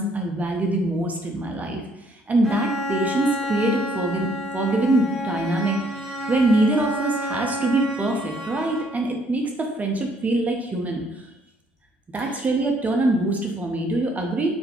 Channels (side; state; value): both; normal; correlation 0.65